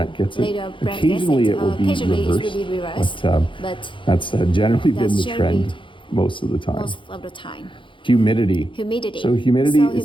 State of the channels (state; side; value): late; right; 0.24 ms